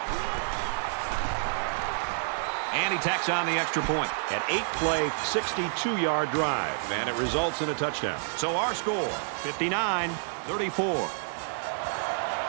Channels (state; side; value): silent; left; digital silence